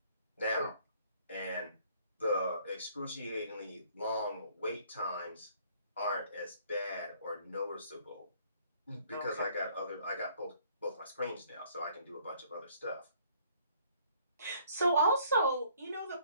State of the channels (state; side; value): inverted; both; correlation -0.61